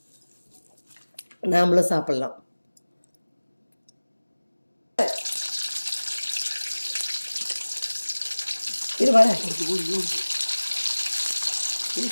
நாமளும் சாப்பிட்லாம். இது வர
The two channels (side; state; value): both; inverted; correlation -1.00